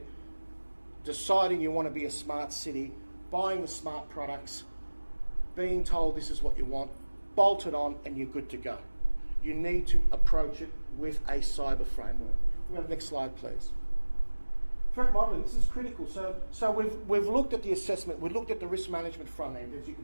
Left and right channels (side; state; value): both; inverted; correlation -1.00